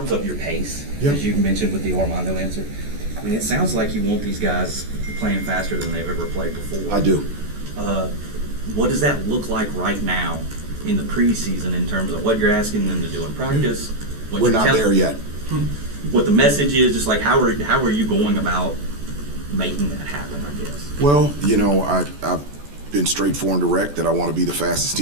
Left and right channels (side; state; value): left; late; 14 ms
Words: your pace, Yep. as you mentioned with the Armando answer, I mean, it sounds like you want these guys playing faster than they've ever played before. I do. What does that look like right now in the preseason in terms of what you're asking them to do in practice? What We're you're not there yet. What the message is, just like how are you going about making that happen, I guess? Well, you know, I've been straightforward and direct that I want to be the fastest